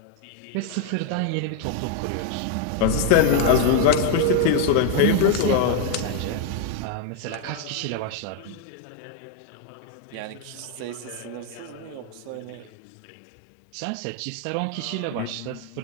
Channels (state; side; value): different; both; correlation 0.01